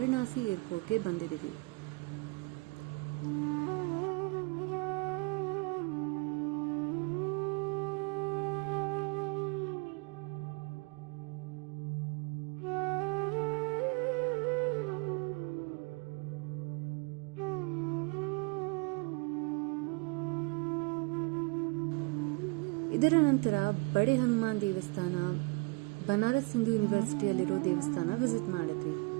ಏರ್ಪೋರ್ಟ್ಗೆ ಬಂದಿದ್ದೀವಿ. ಇದರ ನಂತರ ಬಡೆ ಹನುಮಾನ್ ದೇವಸ್ಥಾನ, ಬನಾರಸ್ ಹಿಂದೂ ಯೂನಿವರ್ಸಿಟಿಯಲ್ಲಿರೋ ದೇವಸ್ಥಾನ ವಿಸಿಟ್ ಮಾಡಿದ್ವಿ.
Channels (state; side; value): quieter; left; 28.5 dB